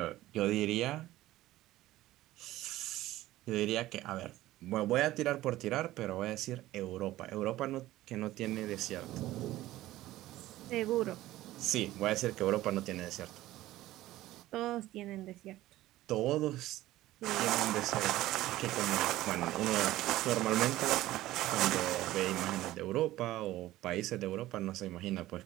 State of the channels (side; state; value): left; quieter; 15.8 dB